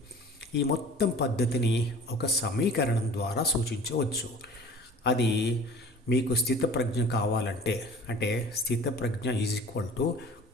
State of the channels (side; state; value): both; normal; correlation 0.44